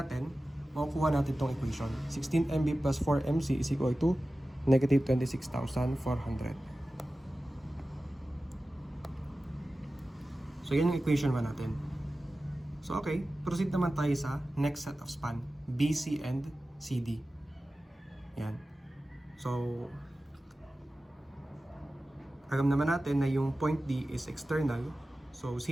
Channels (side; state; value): both; normal; correlation 0.95